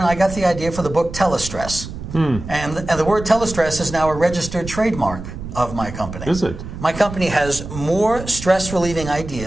I got the idea for the book Telestress. And the word telestress is now a registered trademark of my company. Is it? My company has more stress-relieving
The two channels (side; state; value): right; noise; rumble, 10 dB below the sound